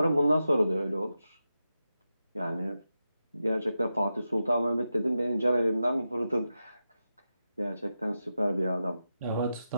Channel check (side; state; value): both; inverted; correlation -0.90